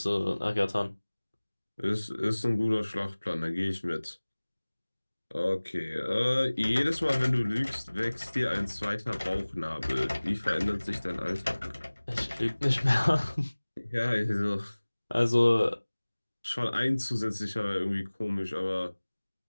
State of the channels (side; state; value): both; inverted; correlation -1.00